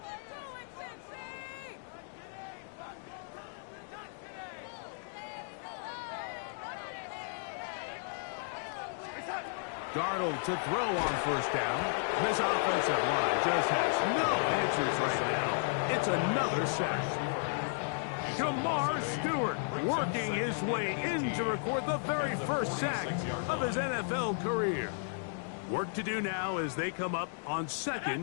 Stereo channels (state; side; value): silent; right; digital silence